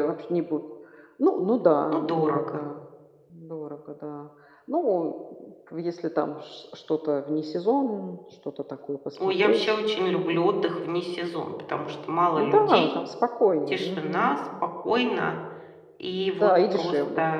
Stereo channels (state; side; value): identical; both; correlation 1.00